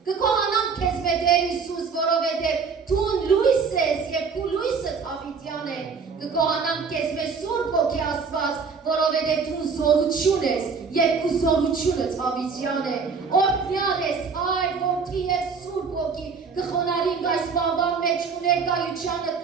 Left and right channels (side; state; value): left; quieter; 5.4 dB